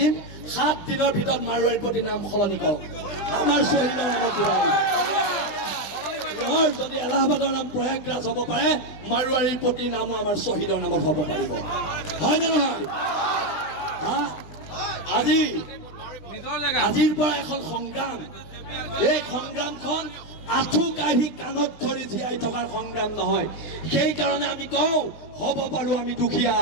7 দিনৰ ভিতৰত মাৰোৱাৰীৰ প্ৰতি নাম সলনি কৰক, আমাৰ শ্বহীদৰ নামত দিব। যদি এলাহাবাদৰ নাম প্ৰয়াগৰাজ হ'ব পাৰে, মাৰোৱাৰীৰ প্ৰতি নামো আমাৰ শ্বহীদৰ নামত হ'ব পাৰিব, হয় নে নহয়? আজিৰ পৰা এখন সংগ্ৰাম, এই সংগ্ৰামখন আঁঠু কাঢ়ি কাণত ধৰি জীয়াই থকাৰ সংগ্ৰাম নহয়। সেইকাৰণে আমি কওঁ হ'ব পাৰোঁ আমি দুখীয়া,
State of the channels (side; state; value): right; late; 20 ms